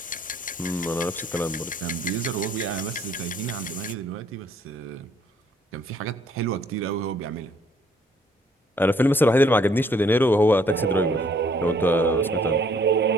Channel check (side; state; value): both; normal; correlation 0.63